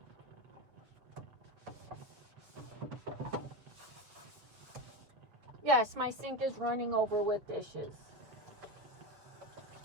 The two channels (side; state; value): left; late; 7.5 ms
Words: Yes, my sink is running over with dishes.